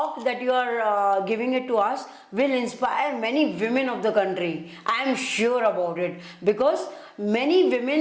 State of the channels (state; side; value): identical; both; correlation 1.00